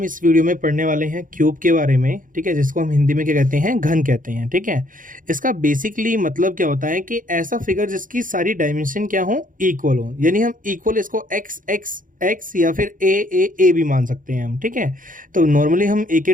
इस वीडियो में पढ़ने वाले हैं क्यूब के बारे में, ठीक है, जिसको हम हिंदी में क्या कहते हैं, घन कहते हैं। ठीक है, इसका बेसिकली मतलब क्या होता है कि ऐसा फिगर जिसकी सारी डायमेंशन क्या हो, इक्वल हो, यानी हम इक्वल इसको एक्स एक्स एक्स या फिर ए भी मान सकते हैं हम। ठीक है, तो नॉर्मली हम ए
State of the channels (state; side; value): late; left; 0.39 ms